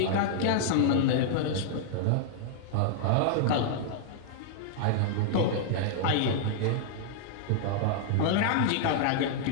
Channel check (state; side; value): different; both; correlation -0.01